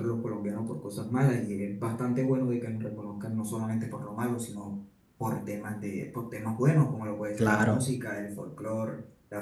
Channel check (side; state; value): both; identical; correlation 1.00